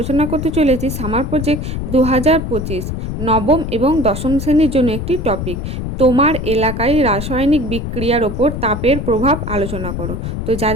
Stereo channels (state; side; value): noise; left; rumble, 4 dB below the sound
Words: করতে চলেছি সামার প্রজেক্ট 2025 নবম এবং দশম শ্রেণীর জন্য একটি টপিক। তোমার এলাকায় রাসায়নিক বিক্রিয়ার ওপর তাপের প্রভাব আলোচনা করো। তো